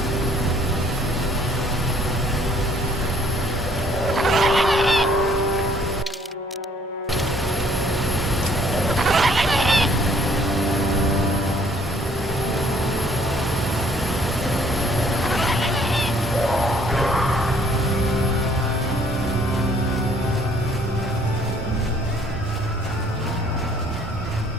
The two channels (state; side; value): normal; both; correlation 0.60